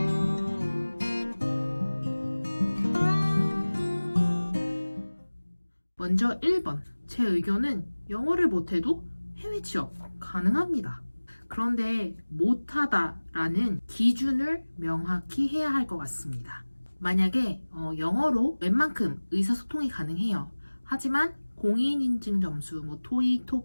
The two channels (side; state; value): both; inverted; correlation -1.00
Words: 먼저 1번. 제 의견은 영어를 못해도 해외 취업 가능합니다. 그런데 못하다라는 기준을 명확히 해야 할 것 같습니다. 만약에 영어로 웬만큼 의사소통이 가능해요. 하지만 공인인증 점수, 토익,